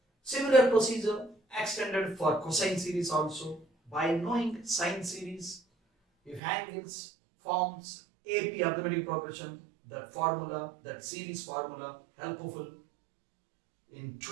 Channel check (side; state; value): left; drops out; at 6.4 s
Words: Similar procedure extended for cosine series also. By knowing sine series, if angles forms AP arithmetic progression, that formula, that series formula helpful in